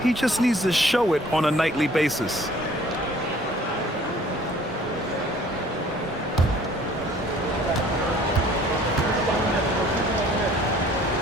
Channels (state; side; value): normal; both; correlation 0.54